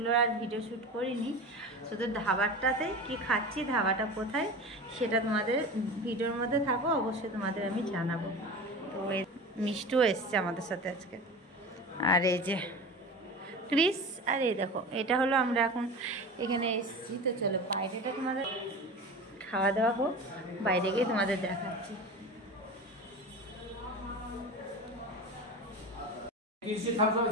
আর ভিডিও শ্যুট করিনি। শুধু ধাবাটাতেই কি খাচ্ছি, ধাবাটা কোথায় সেটা তোমাদের ভিডিওর মধ্যে থাকো, অবশ্যই তোমাদের আমি জানাবো। তো মিষ্টু এসছে আমাদের সাথে আজকে, আর এই যে ক্রিস, আর এই দেখো এটা হলো আমরা এখন এখানে এসেছি। তো চলো বাইরেটা তোমাদের খাওয়া দাওয়া হোক, বাইরে গিয়ে তোমাদের দেখাচ্ছি।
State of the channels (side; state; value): both; normal; correlation 0.31